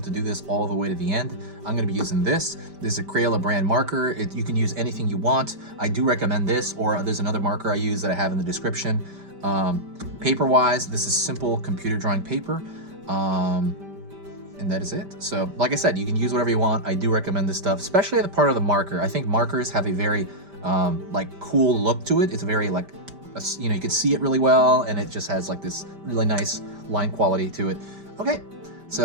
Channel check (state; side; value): late; left; 5.1 ms